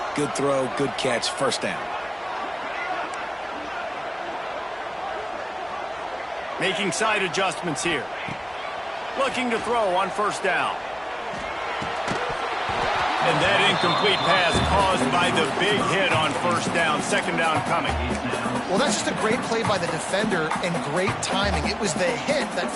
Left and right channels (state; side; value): identical; both; correlation 1.00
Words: Good throw, good catch, first down. Making side adjustments here. Looking to throw on first down. And that incomplete pass caused by the big hit on first down. Second down coming. Well, that's just a great play by the defender and great timing. It was the hit that